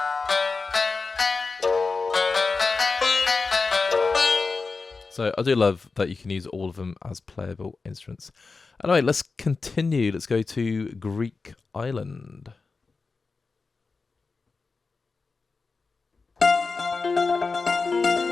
So I do love that you can use all of them as playable instruments. Anyway, let's continue. Let's go to Greek Island.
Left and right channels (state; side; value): quieter; right; 4.3 dB